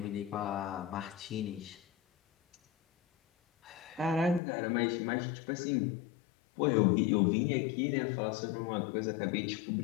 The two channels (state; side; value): drops out; right; at 4.4 s